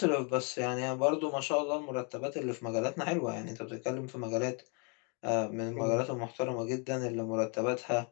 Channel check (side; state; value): right; quieter; 35.9 dB